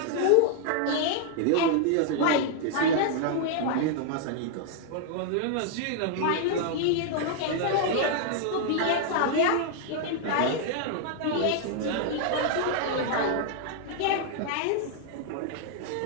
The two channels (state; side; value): different; both; correlation 0.00